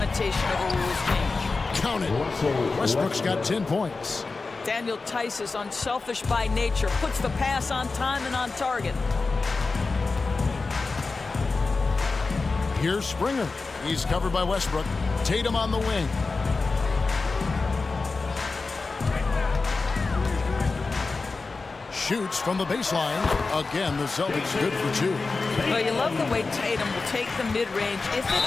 of a rules change. Count it. Westbrook's got 10 points. Daniel Tice is unselfish by nature, puts the pass on time and on target. Here's Springer. He's covered by Westbrook. Tatum on the wing. Shoots from the baseline. Again, the Celtics good for 2. Well, you love the way Tatum will take the mid-range if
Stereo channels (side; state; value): right; quieter; 4.0 dB